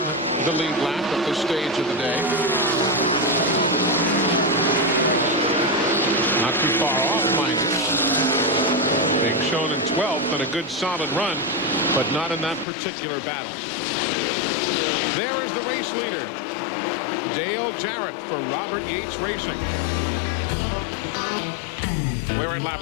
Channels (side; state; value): right; drops out; at 12.7 s